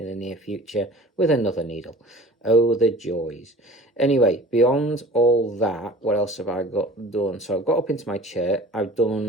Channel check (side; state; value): both; normal; correlation 0.43